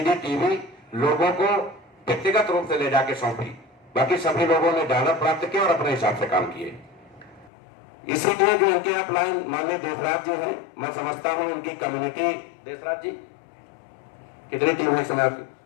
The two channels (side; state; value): right; drops out; at 7.5 s